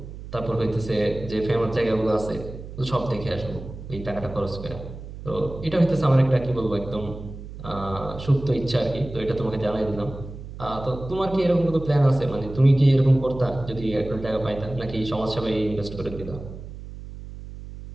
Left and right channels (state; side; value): noise; right; hum, 12 dB below the sound